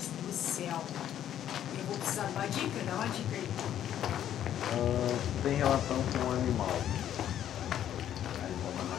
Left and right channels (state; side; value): quieter; right; 10.8 dB